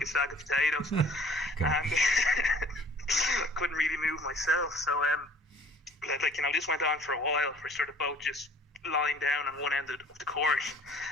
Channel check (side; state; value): both; normal; correlation 0.52